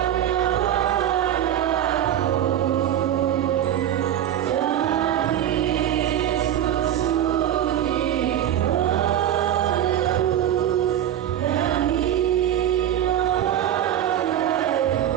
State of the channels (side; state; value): left; quieter; 10.9 dB